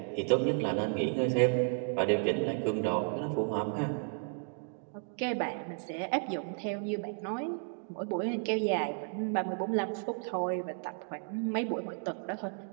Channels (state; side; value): silent; left; 56 dB below the other